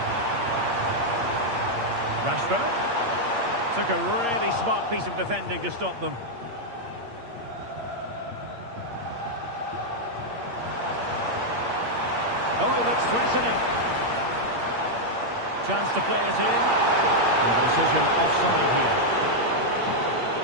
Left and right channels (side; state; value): left; late; 8.6 ms